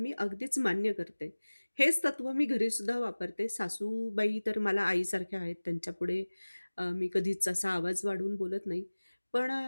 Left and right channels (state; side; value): inverted; both; correlation -1.00